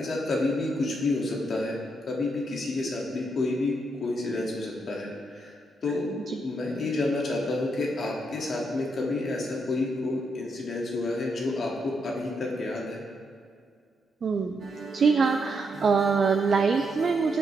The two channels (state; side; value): normal; both; correlation 0.79